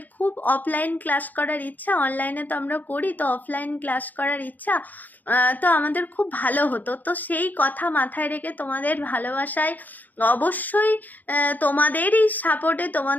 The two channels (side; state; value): right; late; 0.083 ms